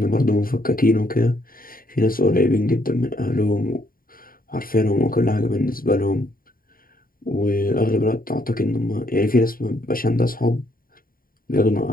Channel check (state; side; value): late; right; 0.41 ms